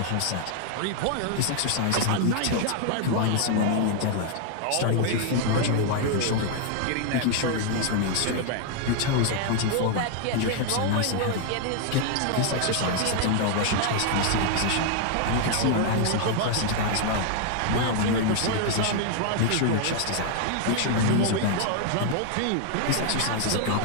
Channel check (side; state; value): both; different; correlation 0.00